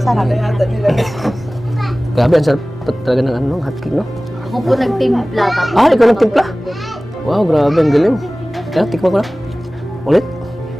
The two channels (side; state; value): both; normal; correlation 0.98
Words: sarap. Grabe, ang sarap talaga ng hotcake, no? Ako po nagtimpla. Ikaw nagtimpla? Wow, grabe, ang galing. Kaya, tikman ko lang. Ulit.